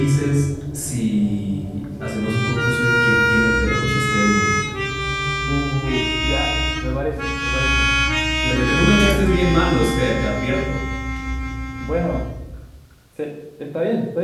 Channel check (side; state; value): both; identical; correlation 1.00